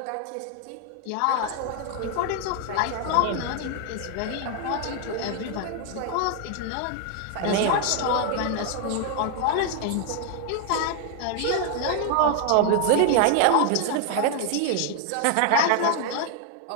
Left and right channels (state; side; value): different; both; correlation 0.00